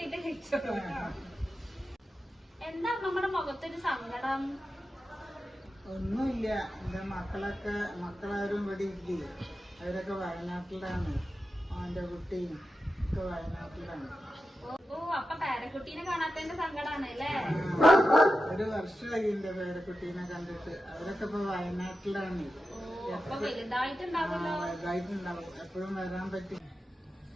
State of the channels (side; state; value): both; normal; correlation 0.91